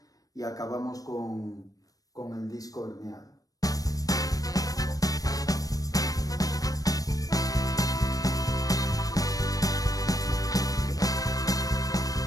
y acabamos con el disco herniado.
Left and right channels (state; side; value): late; right; 0.18 ms